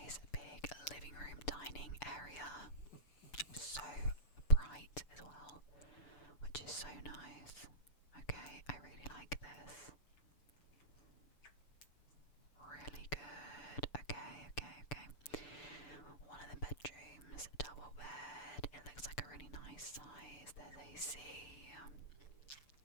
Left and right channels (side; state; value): right; late; 6.8 ms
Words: big living room, dining area. So bright as well, which is so nice. Okay, I really like this. Really good. Okay. One of the bedrooms, double bed. It looks like a really nice size. There's AC.